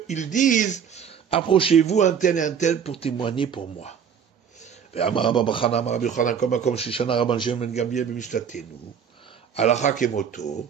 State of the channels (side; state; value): left; quieter; 7.6 dB